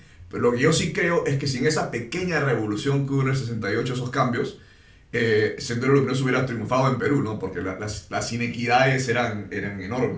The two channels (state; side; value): identical; both; correlation 1.00